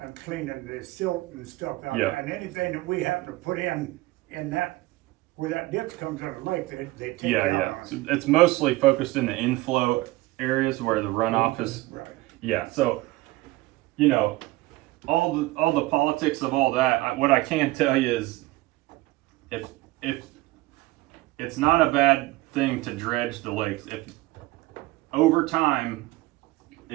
And cleaning the silt and stuff out. Yeah. And anything that we happen to put in that, where that ditch comes out of the lake, they take Yeah, out yeah. on So it. it's mostly focused in the inflow areas where the runoff is. Right. Yeah. So, all the politics of all that. What I can tell you is, if it's not a bad thing to dredge the lakes. If over time,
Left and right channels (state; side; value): quieter; left; 19.2 dB